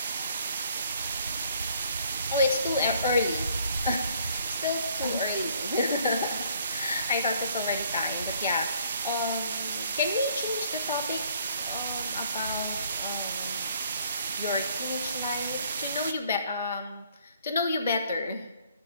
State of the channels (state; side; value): inverted; both; correlation -0.62